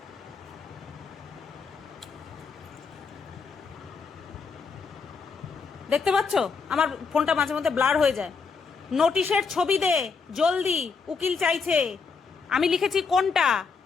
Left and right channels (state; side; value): quieter; right; 5.1 dB